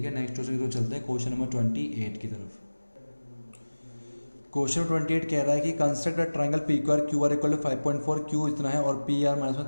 है, नेक्स्ट क्वेश्चन की तरफ चलते हैं, क्वेश्चन नंबर 28 की तरफ। क्वेश्चन 28 कह रहा है कि construct a triangle PQR QR equal to 5.4, Q इतना है और PR माइनस में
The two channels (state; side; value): inverted; both; correlation -1.00